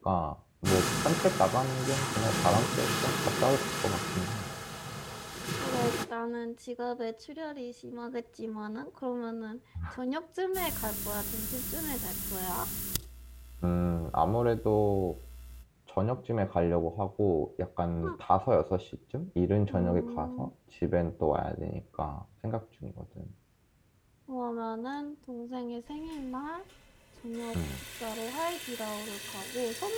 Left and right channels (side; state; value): both; identical; correlation 1.00